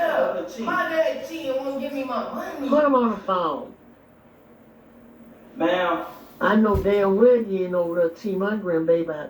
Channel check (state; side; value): identical; both; correlation 1.00